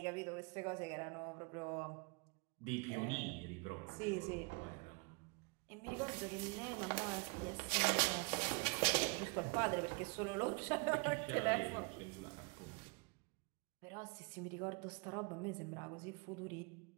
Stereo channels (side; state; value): left; quieter; 31.3 dB